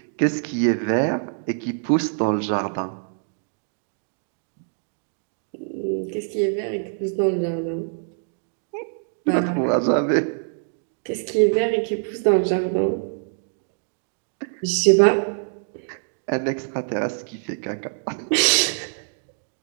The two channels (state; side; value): silent; left; digital silence